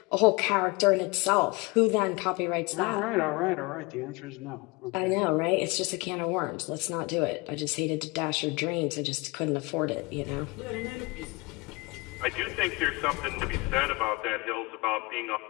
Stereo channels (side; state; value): right; quieter; 26.0 dB